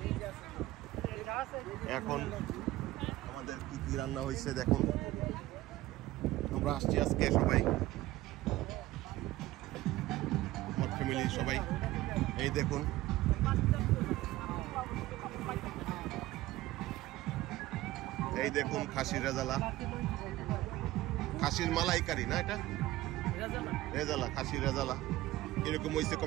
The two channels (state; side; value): quieter; left; 16.7 dB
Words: এখন আমাদের কি কি রান্না হয়েছে দেখুন। আমরা আসছি আজকে সবাই, আমার ফ্যামিলি সবাই। এই দেখুন, এই দেখুন খাসির রেজালা, খাসির মালাইকারি না, এটা রেজালা, খাসির রেজালা। এরকম হয়েছে